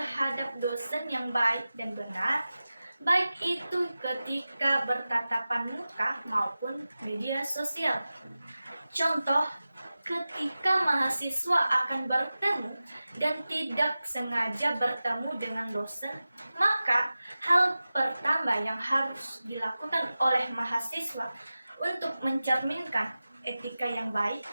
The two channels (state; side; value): inverted; both; correlation -0.95